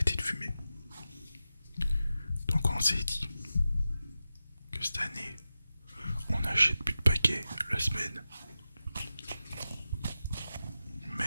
de fumer. Donc on s'est dit que cette année, on n'achète plus de paquets la semaine.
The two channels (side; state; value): both; inverted; correlation -0.93